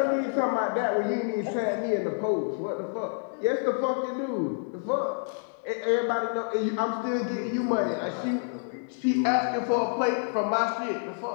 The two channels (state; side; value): silent; right; 59 dB below the other